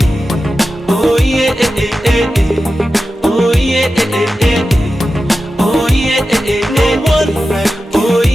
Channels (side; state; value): both; normal; correlation 0.93